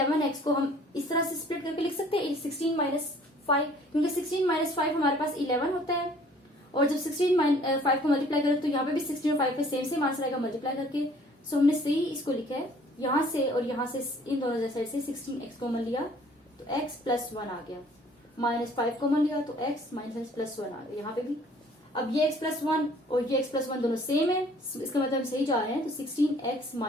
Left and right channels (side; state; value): both; normal; correlation 0.56